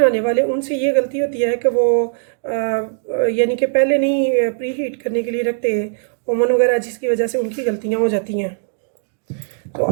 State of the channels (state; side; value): silent; left; digital silence